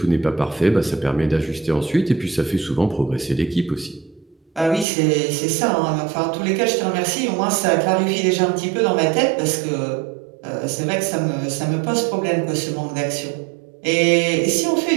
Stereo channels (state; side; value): drops out; left; at 4.9 s